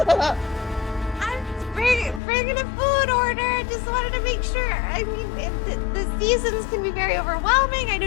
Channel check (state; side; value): drops out; right; at 2.2 s